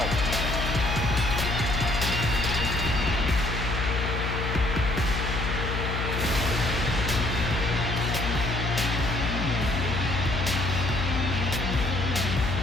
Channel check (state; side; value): noise; left; hum, 2 dB below the sound